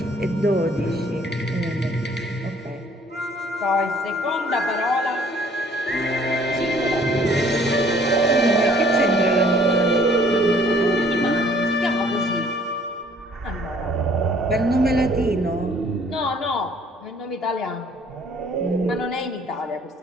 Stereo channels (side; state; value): both; normal; correlation 0.58